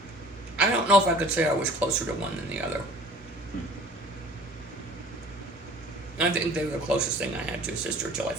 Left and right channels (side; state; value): both; normal; correlation 0.48